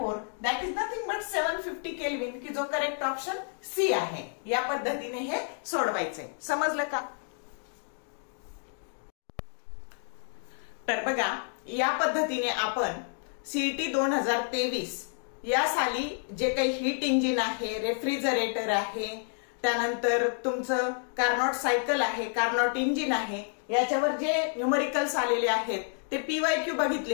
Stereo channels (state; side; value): silent; right; 58 dB below the other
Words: that is nothing but 750 kelvin, की जो करेक्ट ऑप्शन सी आहे. या पद्धतीने हे सोडवायचे. समजलं का? तर बघा, या पद्धतीने आपण सीईटी 2023 या साली जे काही हीट इंजिन आहे, रेफ्रिजरेटर आहे, त्यानंतर तुमचं कार्नॉट सायकल आहे, कार्नॉट इंजिन आहे, याच्यावर जे न्यूमरिकल्स आलेले आहेत ते पीवायक्यू